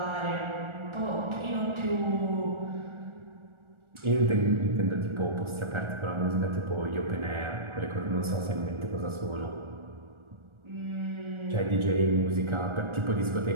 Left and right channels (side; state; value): left; late; 1.4 ms